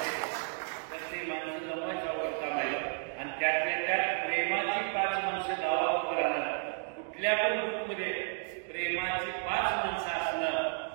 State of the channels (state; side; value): silent; left; 56 dB below the other